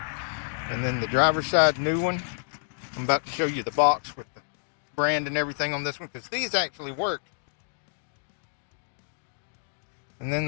And then the driver's side new one. I'm about to show you the box with the brand and everything on this one because these actually work. And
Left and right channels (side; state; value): right; silent; digital silence